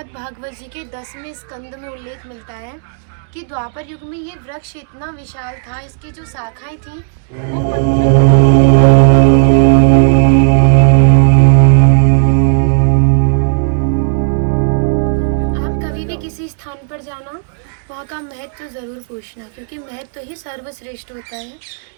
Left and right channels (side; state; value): left; silent; digital silence